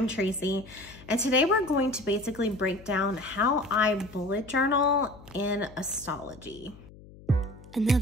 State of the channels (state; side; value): noise; left; hum, 20 dB below the sound